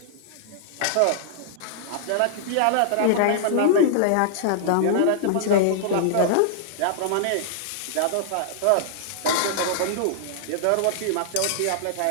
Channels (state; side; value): different; both; correlation -0.01